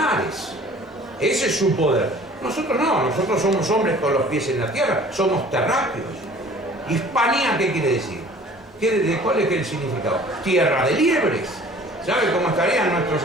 Ese es su poder. Nosotros no, nosotros somos hombres con los pies en la tierra, somos terráqueos. Hispanía, ¿qué quiere decir? ¿Cuál es el significado? Tierra de liebres. ¿Sabe cómo estarían nuestros...?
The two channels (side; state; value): both; normal; correlation 0.49